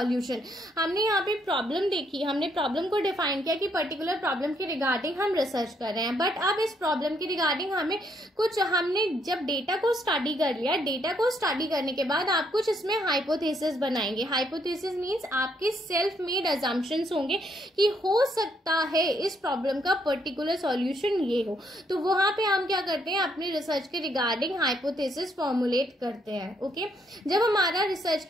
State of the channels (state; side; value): normal; both; correlation 0.72